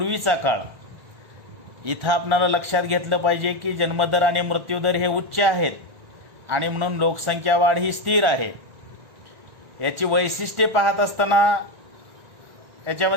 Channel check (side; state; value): left; late; 1.5 ms